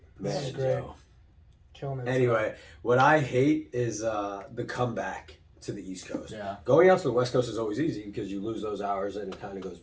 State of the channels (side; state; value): both; identical; correlation 1.00